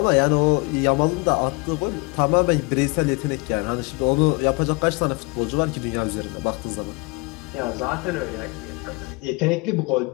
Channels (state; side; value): quieter; right; 28.0 dB